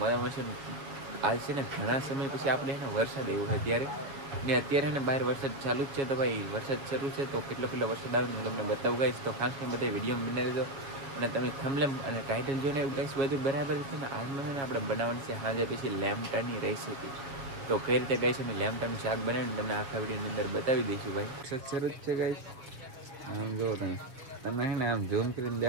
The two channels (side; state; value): left; late; 7.2 ms